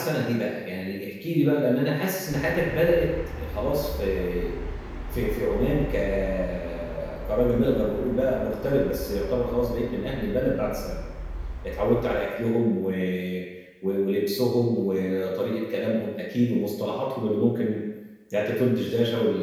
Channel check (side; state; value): both; identical; correlation 1.00